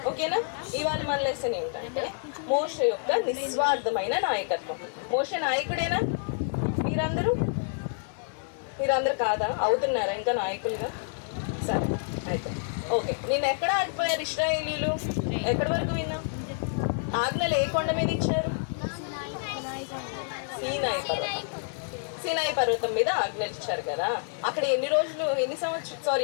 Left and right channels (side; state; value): right; silent; digital silence